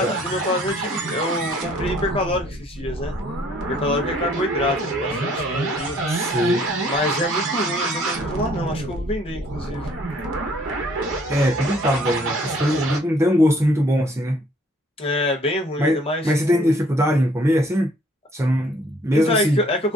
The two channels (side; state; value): both; normal; correlation 0.60